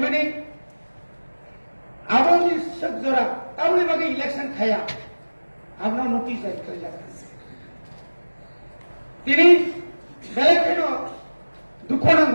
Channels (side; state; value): both; inverted; correlation -1.00